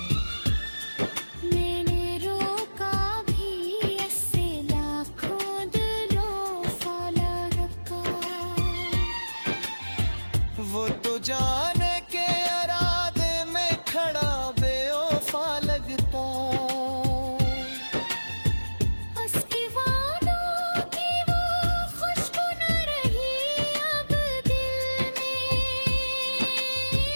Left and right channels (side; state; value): both; inverted; correlation -1.00